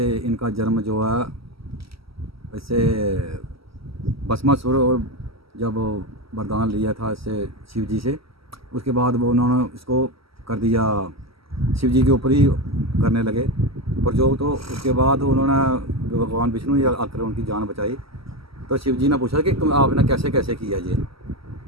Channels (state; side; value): late; left; 0.75 ms